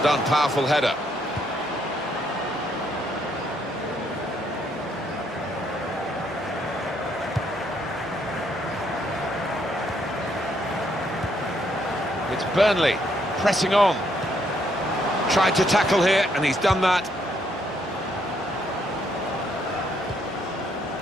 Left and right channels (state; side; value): normal; both; correlation 0.72